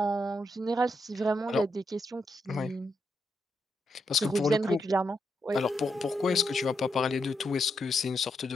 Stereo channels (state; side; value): normal; both; correlation 0.82